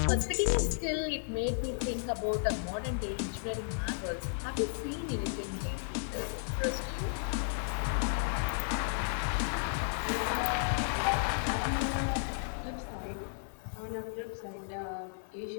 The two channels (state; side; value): silent; right; 55 dB below the other